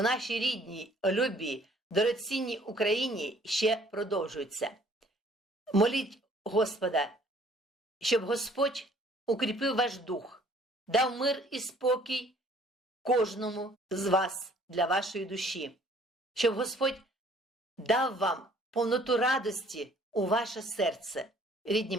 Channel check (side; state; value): both; normal; correlation 0.58